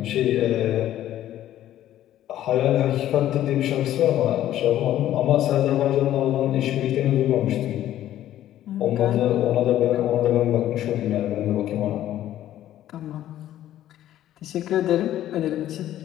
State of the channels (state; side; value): quieter; right; 12.6 dB